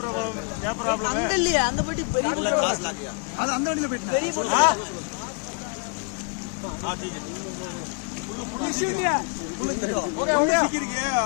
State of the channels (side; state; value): right; quieter; 36.9 dB